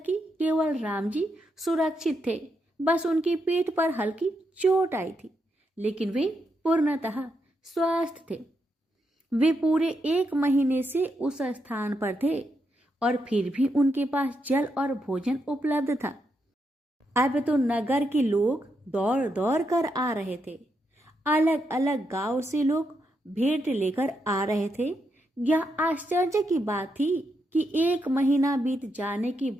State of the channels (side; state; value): both; normal; correlation 0.82